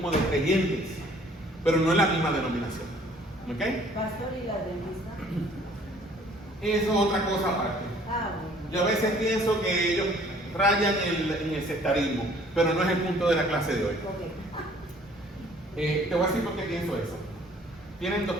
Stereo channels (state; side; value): normal; both; correlation 0.56